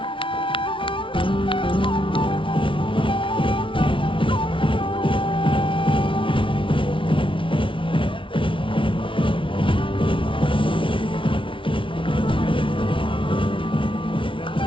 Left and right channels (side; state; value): right; late; 0.25 ms